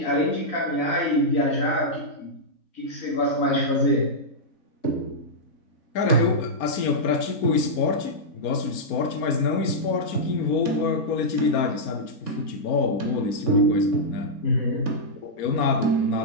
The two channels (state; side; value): late; right; 4.3 ms